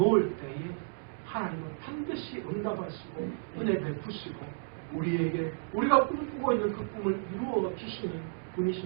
때에 하나님은 반드시 응답하시고 은혜 베푸시고 우리에게 우리가 꿈꾸고 있는 그 꿈을 이루어 주시는 분이신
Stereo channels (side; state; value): left; silent; digital silence